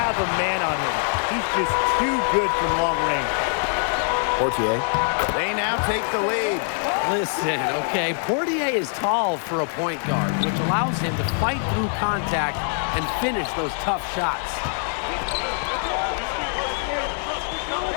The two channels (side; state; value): right; silent; 59 dB below the other